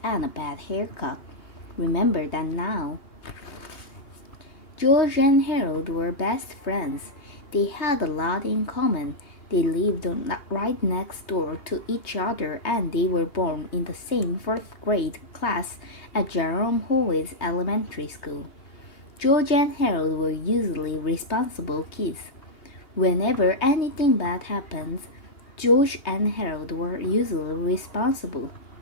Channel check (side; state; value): right; late; 3.2 ms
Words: and a bad haircut. Remember that now. George and Harold were best friends. They had a lot in common. They lived right next door to each other and they were born in the same fourth grade class at Jerome Hallway's elementary school. George and Harold were usually responsible kids. Whenever anything bad happens, George and Harold were usually responsible.